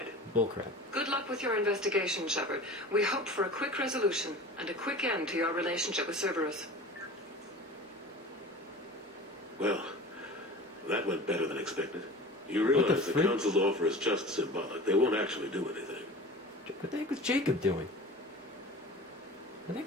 Bullcrap. Good luck with your investigation, Shepard. We hope for a quick resolution and a quick end to your relationship with Cerberus. Well, that went better than expected. You realize the Council's offer is just symbolic. They won't actually do anything. What the heck was Jacob doing? What the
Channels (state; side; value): normal; both; correlation 0.37